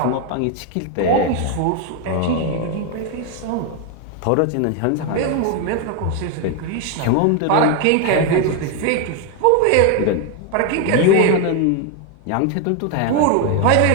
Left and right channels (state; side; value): different; both; correlation 0.01